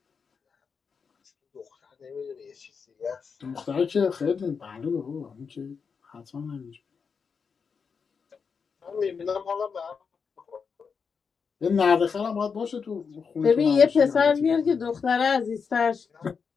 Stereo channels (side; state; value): right; quieter; 5.8 dB